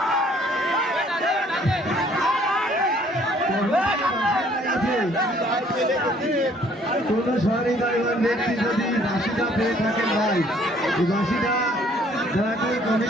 কোন সরকারি গাইবান ব্যক্তি যদি বাসিটা পেয়ে থাকেন ভাই, এই বাসিটা দয়া করে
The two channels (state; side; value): normal; both; correlation 0.60